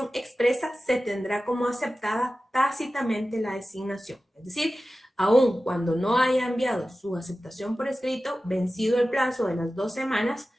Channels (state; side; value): normal; both; correlation 0.95